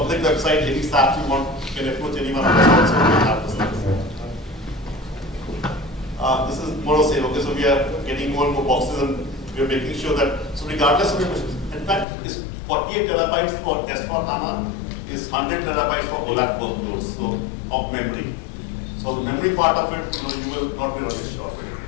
website, any staff you want, you can approach anyone of us also to have this thing. This is more of saying, okay, so we are getting more and more boxes, and we are making sure that, so regardless of your questions, in fact, it's 48 terabytes for S4 HANA, is 100 terabytes for OLAP workloads, so of memory. So the memory part of it, you will not be really sure of it.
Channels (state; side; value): drops out; right; at 12.1 s